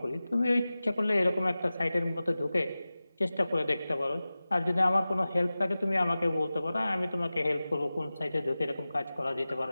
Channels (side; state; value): both; inverted; correlation -0.96